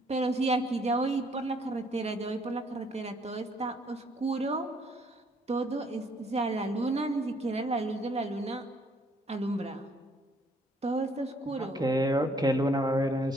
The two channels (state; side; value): normal; both; correlation 0.65